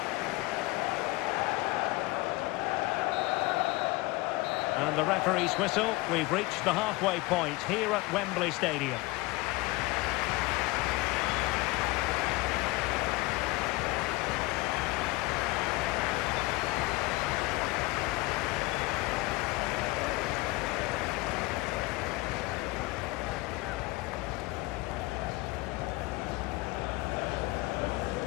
And the referee's whistle. We've reached the halfway point here at Wembley Stadium.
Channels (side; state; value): right; quieter; 21.4 dB